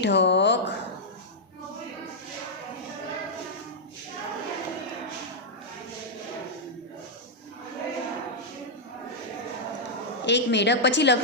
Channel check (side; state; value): both; normal; correlation -0.07